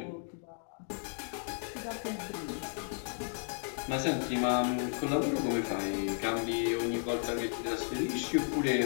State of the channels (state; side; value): silent; right; 55 dB below the other